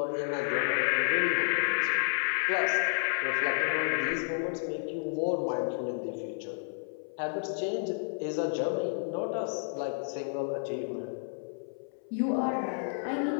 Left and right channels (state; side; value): silent; right; 57 dB below the other